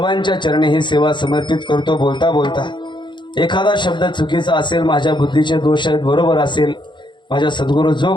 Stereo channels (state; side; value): late; right; 0.23 ms